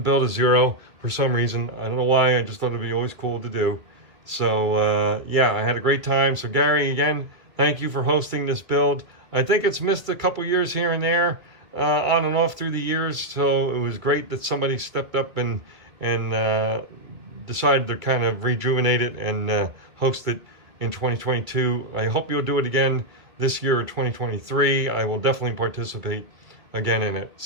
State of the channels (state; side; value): late; left; 2.3 ms